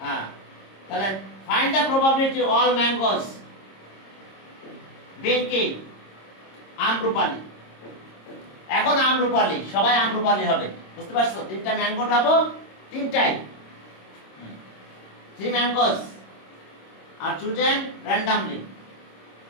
তাহলে find the probability all mangoes being কি? আম্রপালি। এখন আম্রপালি, সবাই আম্রপালি হবে, বুঝতে পারছো? 3টা ম্যাঙ্গো পাবো, 3টাই 3 mangoes are chosen randomly.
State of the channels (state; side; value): late; right; 26 ms